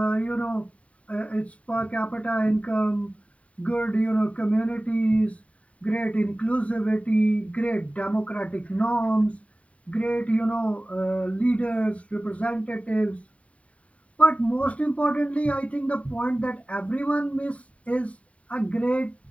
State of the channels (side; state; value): right; late; 0.066 ms